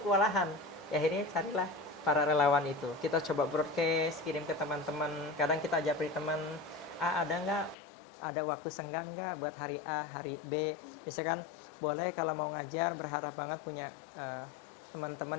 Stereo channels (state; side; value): drops out; right; at 7.8 s